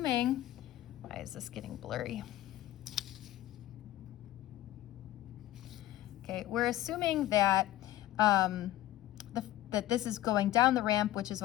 why is this getting blurry? Okay, we're assuming that that this is going down the ramp, which is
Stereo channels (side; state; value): right; quieter; 14.6 dB